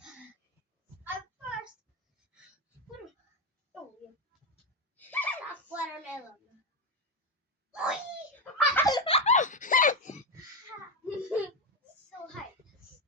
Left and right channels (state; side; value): normal; both; correlation 0.10